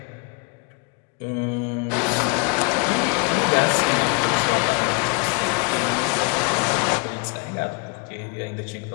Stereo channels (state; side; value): quieter; right; 32.8 dB